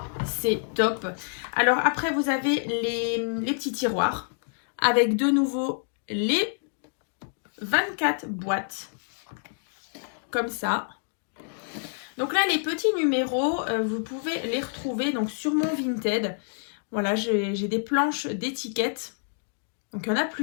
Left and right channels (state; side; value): silent; right; digital silence